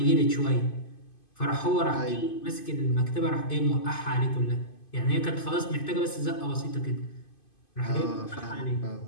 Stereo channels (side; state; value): right; late; 2.5 ms